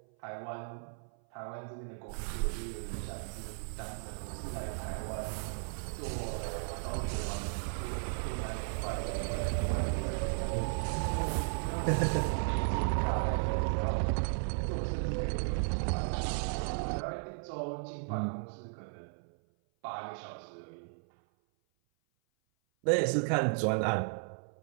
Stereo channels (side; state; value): left; silent; 54 dB below the other